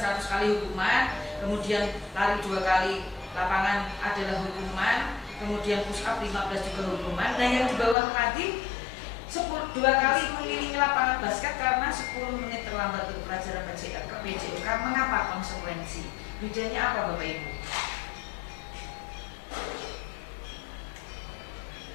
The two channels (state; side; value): drops out; right; at 8.0 s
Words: kali hukuman, kemudian lari 2 kali lapangan adalah hukuman, kemudian push up 15 juga hukuman. Nah, yang di bawah tadi 2 kali mengelilingi lapangan basket karena 10 menit terlambat untuk pelajaran PJOK. Mengapa konsekuensi? Bedanya apa Bapak Ibu?